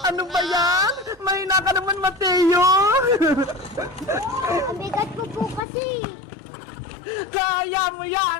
Ano ba yan? Mahina ka naman, Mateo! Ang bigat ko po kasi. Kaya mo yan!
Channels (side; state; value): right; drops out; at 5.6 s